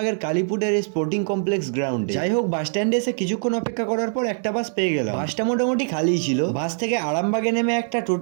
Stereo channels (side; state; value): left; silent; digital silence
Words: কালীপুরের স্পোর্টিং কমপ্লেক্স গ্রাউন্ডে। যাই হোক, বাস স্ট্যান্ডে এসে কিছুক্ষণ অপেক্ষা করার পর একটা বাস পেয়ে গেলাম। বাসটা মোটামুটি খালিই ছিল। বাস থেকে আরামবাগে নেমে একটা